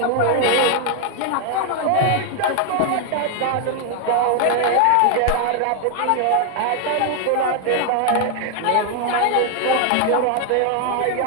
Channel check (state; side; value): different; both; correlation 0.00